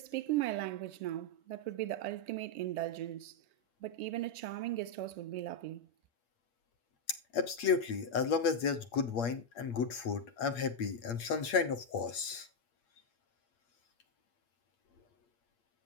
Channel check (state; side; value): late; right; 8.5 ms